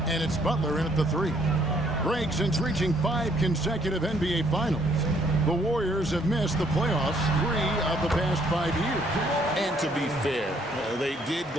and it's Butler in at the 3. Greg, since reaching 5 consecutive NBA Finals, the Warriors have missed the playoffs 3 of the past 5 years. And to be fair, they did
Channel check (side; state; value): both; normal; correlation 0.66